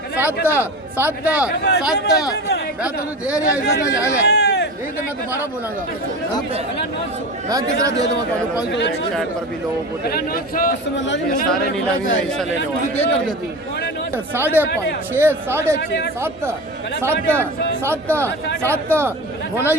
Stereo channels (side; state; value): both; normal; correlation 0.29